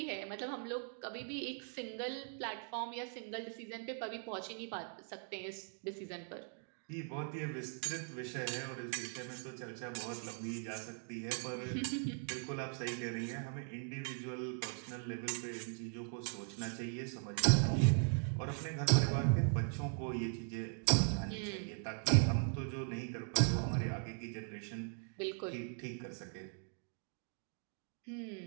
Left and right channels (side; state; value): left; silent; 51 dB below the other